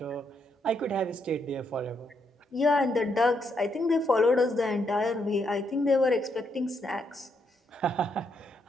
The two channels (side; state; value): both; normal; correlation 0.77